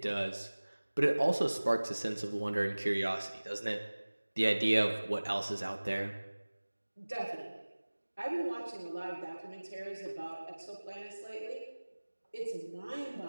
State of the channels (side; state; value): both; inverted; correlation -1.00